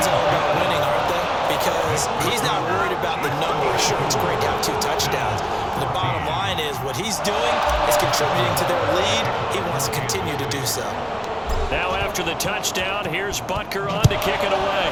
all about winning, aren't they? Because he's not worried about the numbers. Sure, it's great to have 2 touchdowns. But the bottom line is what he's doing is contributing to their lead. He wants to continue to do so. Now after the touchdown, here's Butker on to kick it away.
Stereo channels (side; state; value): both; identical; correlation 1.00